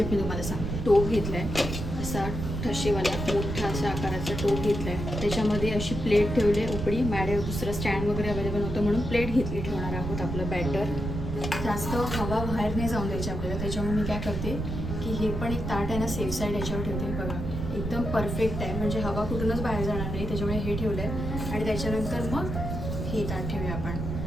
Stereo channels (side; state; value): right; noise; rumble, 4 dB below the sound